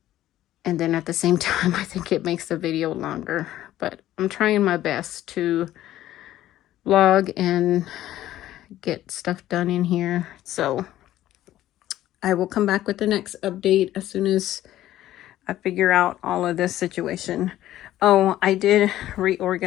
And then at the same time, I think it makes the video longer. But I'm trying my best to vlog and get stuff done in here. So I will come back with the next update as soon as I figure out all of this situation. Oh, I did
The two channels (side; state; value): right; quieter; 13.7 dB